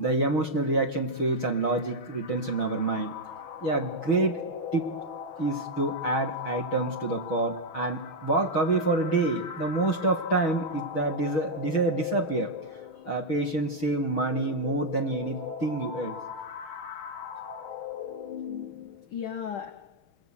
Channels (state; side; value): late; right; 6.3 ms